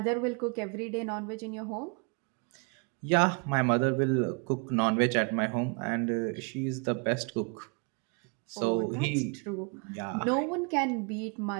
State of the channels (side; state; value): left; quieter; 34.8 dB